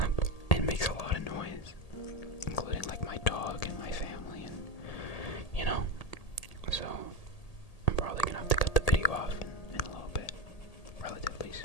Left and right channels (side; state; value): right; late; 1.8 ms